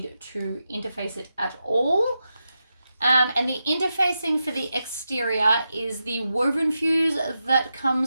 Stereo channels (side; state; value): both; inverted; correlation -0.89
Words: to interface it at all. And the interfacing for the exterior is the woven fuse that